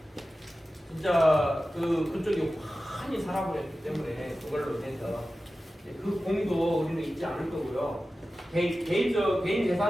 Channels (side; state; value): both; normal; correlation 0.94